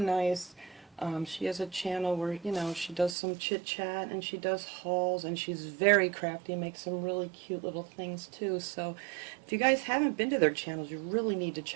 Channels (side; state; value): left; drops out; at 3.2 s